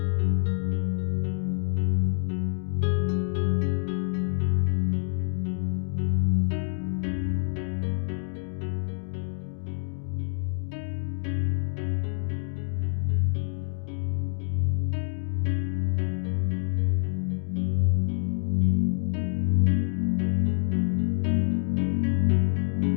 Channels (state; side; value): silent; right; digital silence